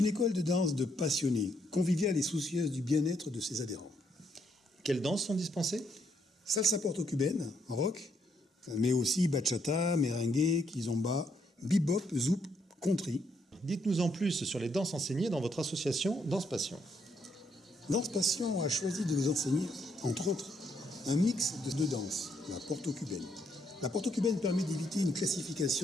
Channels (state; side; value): normal; both; correlation 0.74